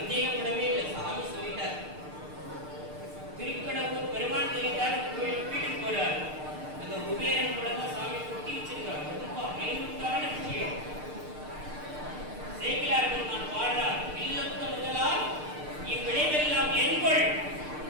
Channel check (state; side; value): late; left; 6.6 ms